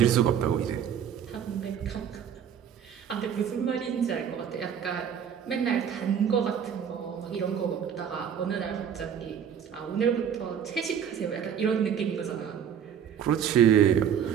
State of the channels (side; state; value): left; quieter; 8.5 dB